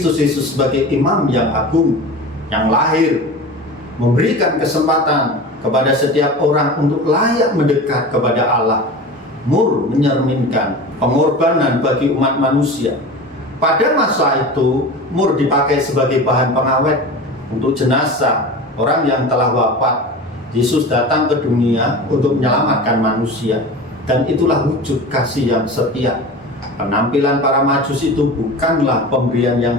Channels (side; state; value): both; normal; correlation 0.32